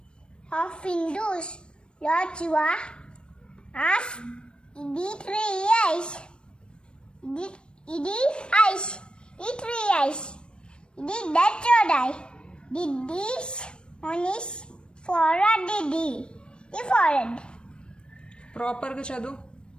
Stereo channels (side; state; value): right; late; 0.054 ms